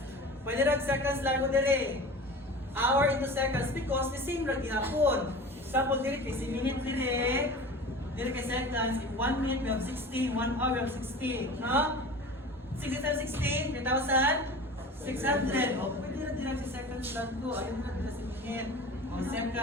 pwede na seconds lang mo dire. Hour into seconds because the same lang gihapon. Example dire kay minute dire kay seconds. In 1 minute we have 60, 1 hour we have 60. No? 60 times 60, 3,600. O pwede na dire sa seconds lang ko. Ayun na dire sa minute. O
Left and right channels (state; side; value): normal; both; correlation 0.36